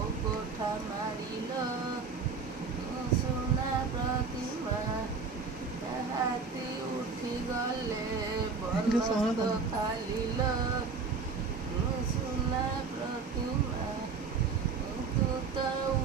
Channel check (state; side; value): quieter; left; 4.9 dB